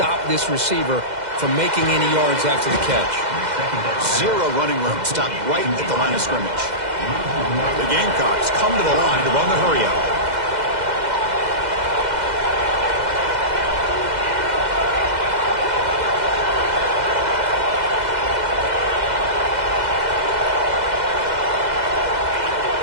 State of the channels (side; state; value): left; late; 2.0 ms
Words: this receiver from making any yards after the catch. 0 running room. Stopped right at the line of scrimmage. The Gamecocks come to the line to run the hurry out.